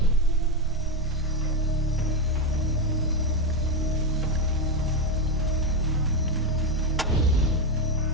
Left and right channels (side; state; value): both; normal; correlation 0.09